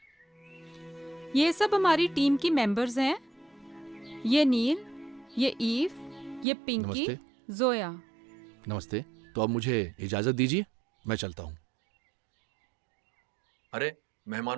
ये सब हमारी टीम की मेंबर्स हैं। ये नील, ये ईव, ये पिंकी, नमस्ते। जोया। नमस्ते। तो अब मुझे इजाजत दीजिए, मैं चलता हूँ। अरे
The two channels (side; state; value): left; drops out; at 6.5 s